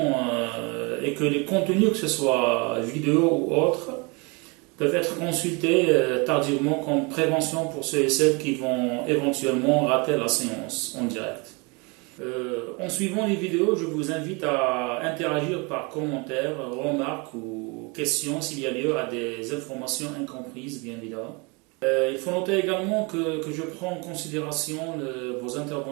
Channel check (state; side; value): quieter; left; 29.5 dB